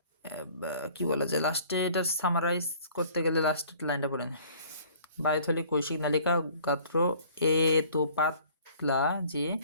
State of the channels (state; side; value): inverted; both; correlation -0.53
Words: কি বলা যায় লাস্টে, এটা সামারাইজ করতে গেলে লাস্টের লাইনটা পড়েন। বায়ুথলি কৈশিক নালিকা গাত্র এত পাতলা যে